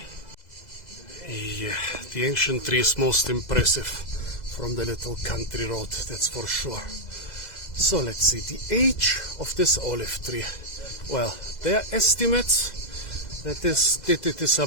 Yeah, the ancient tree is most impressive from the little country road, that's for sure. So let's see, the age of this olive tree. Well, there are estimates that it is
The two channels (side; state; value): right; late; 2.0 ms